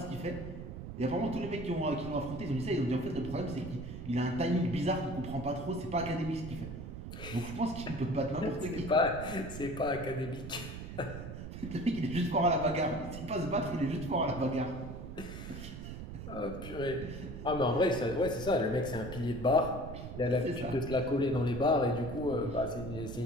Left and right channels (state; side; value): noise; right; rumble, 9 dB below the sound